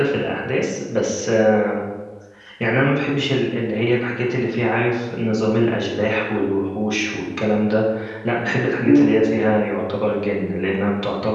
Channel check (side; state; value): both; identical; correlation 1.00